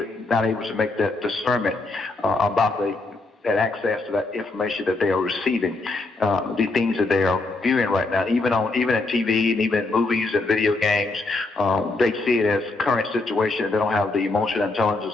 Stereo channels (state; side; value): quieter; right; 3.3 dB